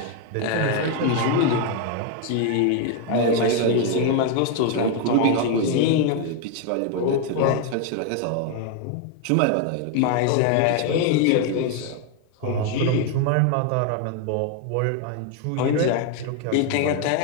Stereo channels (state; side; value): different; both; correlation 0.01